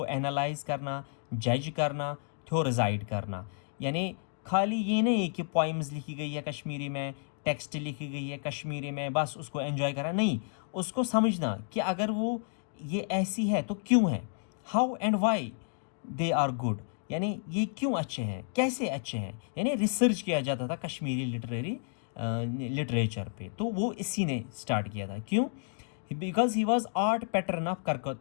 एनालाइज करना, जज करना, थ्योरिजाइड करना। यानी खाली ये नहीं कि पोइम्स लिखी गई है कश्मीरी में, टेक्स्ट लिखी गई है कश्मीरी में, बस उसको एंजॉय करना, नहीं, उसको समझना कि अगर वो ये ऐसी है तो क्यों है, how and why they are good, यानी ये क्यों अच्छे हैं, कैसे अच्छे हैं। यानी रिसर्च किया जाता था कश्मीरी लिटरेचर पे, तो वो इसी ने स्टार्ट किया था। क्यों? Because he was art pattern of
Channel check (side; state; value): right; silent; digital silence